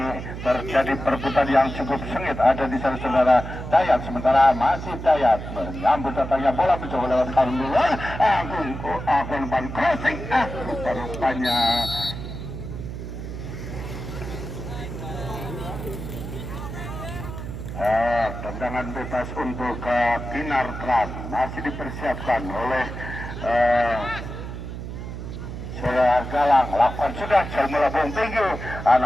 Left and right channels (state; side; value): noise; right; hum, 8 dB below the sound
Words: terjadi perebutan yang cukup sengit ada di sana saudara Dayat. Sementara masih Dayat menyambut datangnya bola mencoba lewat luar. Agun crossing. Rupanya tendangan bebas untuk Kinartran masih dipersiapkan oleh Saudara Galang. Lakukan sudah jauh melambung tinggi,